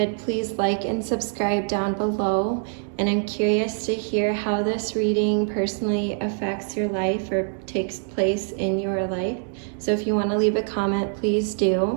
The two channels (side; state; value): left; silent; 62 dB below the other